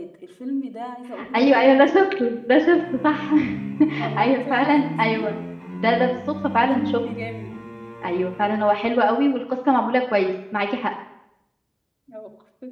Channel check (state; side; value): identical; both; correlation 1.00